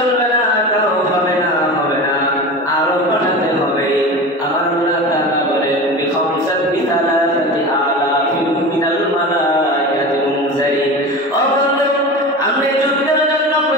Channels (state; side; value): normal; both; correlation 0.30